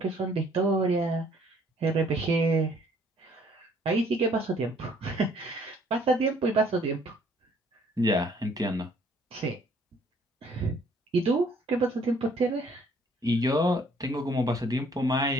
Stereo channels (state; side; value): normal; both; correlation 0.61